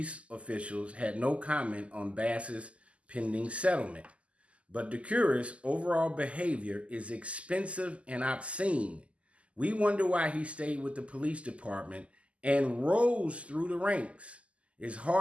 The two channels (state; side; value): late; left; 0.060 ms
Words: officials had no comment on Bass's pending settlement. But Decuris' overall behavior is expensive and obscene. We wonder why he stayed with the police department and rose through the ranks. It's